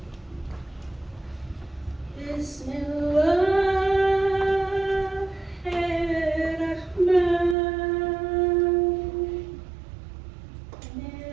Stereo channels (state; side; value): drops out; left; at 7.6 s